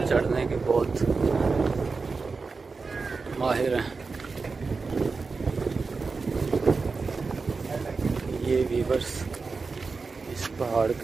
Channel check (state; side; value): quieter; left; 4.4 dB